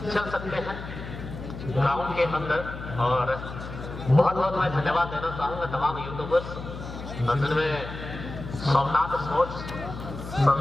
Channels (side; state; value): left; noise; hum, 10 dB below the sound